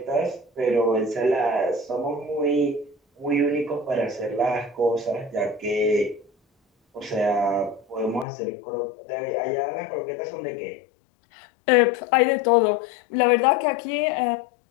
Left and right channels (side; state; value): right; drops out; at 8.2 s